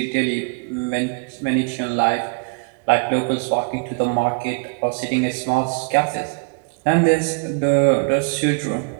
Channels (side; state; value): left; quieter; 35.5 dB